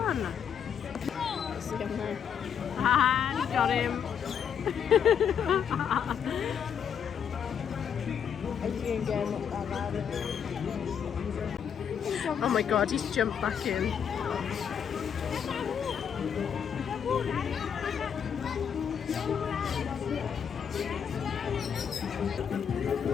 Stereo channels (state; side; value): quieter; right; 7.8 dB